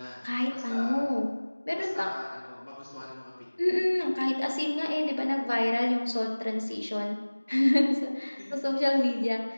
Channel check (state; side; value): inverted; both; correlation -1.00